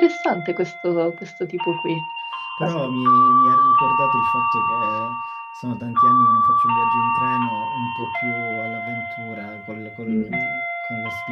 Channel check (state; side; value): identical; both; correlation 1.00